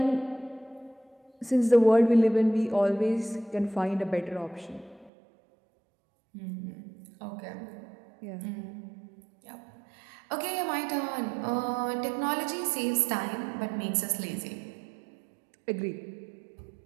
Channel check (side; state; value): left; drops out; at 5.1 s